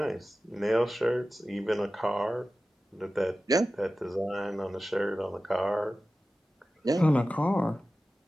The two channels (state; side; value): normal; both; correlation 0.95